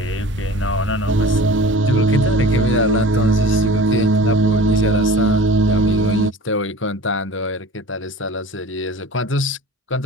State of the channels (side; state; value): both; normal; correlation 0.41